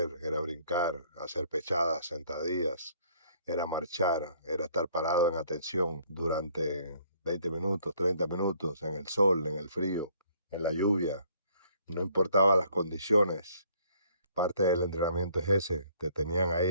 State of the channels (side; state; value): both; inverted; correlation -0.62